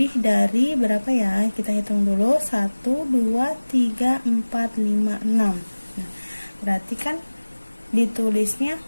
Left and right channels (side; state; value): both; inverted; correlation -1.00